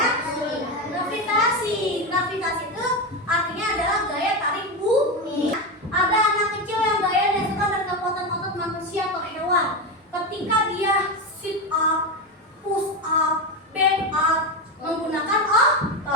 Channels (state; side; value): normal; both; correlation 0.15